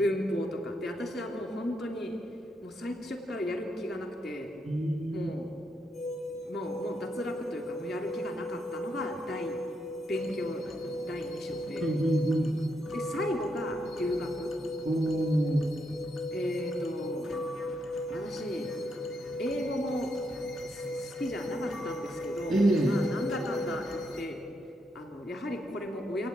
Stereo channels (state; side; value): normal; both; correlation 0.79